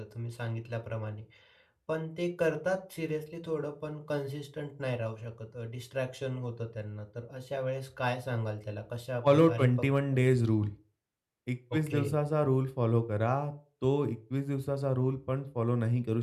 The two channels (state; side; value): identical; both; correlation 1.00